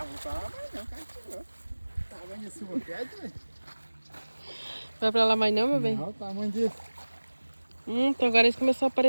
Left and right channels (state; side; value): inverted; both; correlation -1.00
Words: Vou falar mais não, cara. Tamanho desse silva pede, velho. Vai pra lá mais não, meu bem? Não, tamanho desse. Então agora eles começaram a